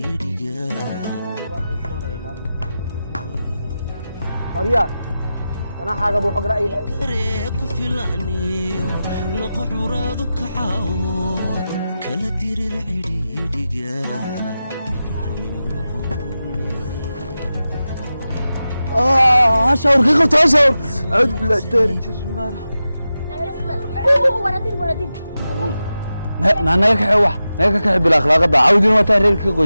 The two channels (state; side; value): inverted; both; correlation -0.92